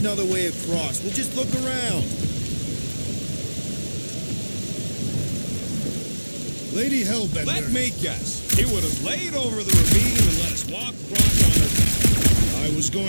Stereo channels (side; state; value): both; inverted; correlation -1.00